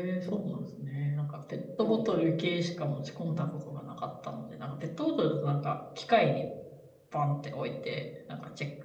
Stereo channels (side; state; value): both; identical; correlation 1.00